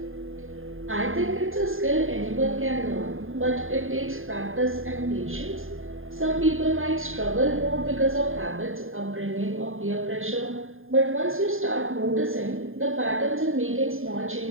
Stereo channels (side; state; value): left; late; 0.60 ms